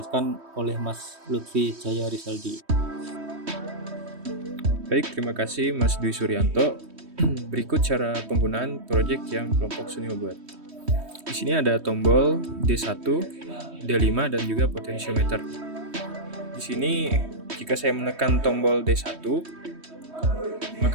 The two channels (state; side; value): late; left; 3.2 ms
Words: oleh Mas Lutfi Jaya Rizaldi. Baik, terima kasih Mas Dwi Suryanto. Berikut cara penggunaan project yang kelompok Sunil buat. Di sini ada tombol D1, D5 dan juga potensiometer. Di sini jika saya menekan tombol D1, maka